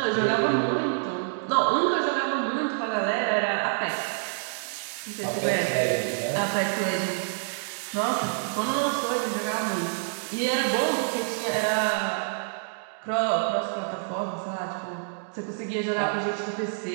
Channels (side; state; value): left; silent; digital silence